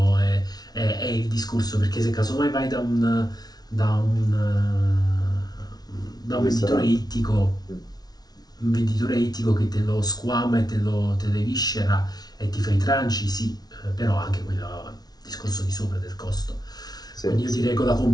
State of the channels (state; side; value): late; right; 0.19 ms